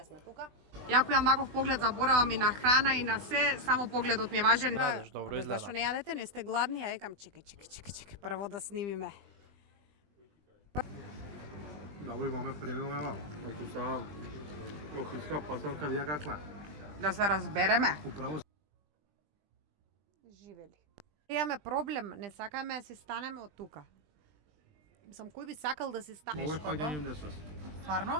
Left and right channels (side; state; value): left; late; 20 ms